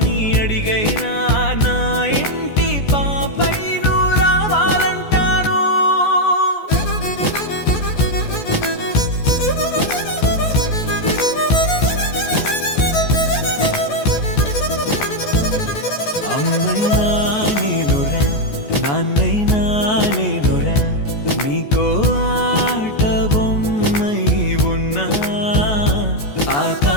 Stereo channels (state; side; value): late; right; 14 ms